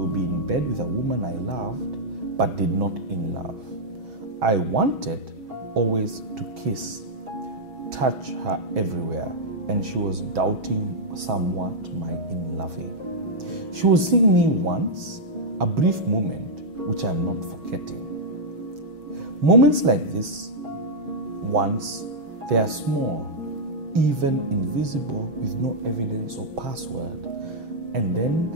be in bed with a woman I loved, but did not in love. I wanted always to kiss, touch her everywhere, and she was doubting somewhat my in-loving. She was seeing me once, a brief moment, which I'm not forgetting. Moments like this, once, they are small, even invisible with no evidence or password, and then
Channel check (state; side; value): late; left; 6.2 ms